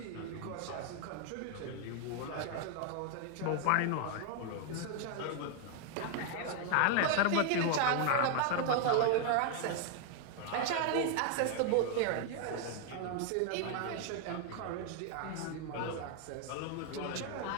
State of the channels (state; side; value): different; both; correlation 0.01